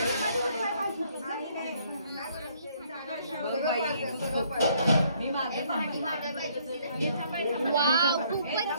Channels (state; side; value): inverted; both; correlation -0.65